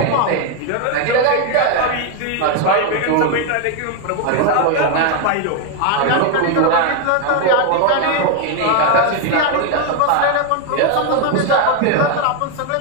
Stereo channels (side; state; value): both; different; correlation 0.01